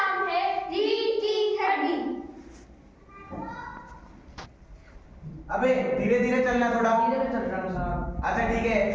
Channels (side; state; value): both; identical; correlation 1.00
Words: है रीढ़ की हड्डी। अबे धीरे धीरे चलना, थोड़ा धीरे चल रहा हूँ साहब। अच्छा ठीक है,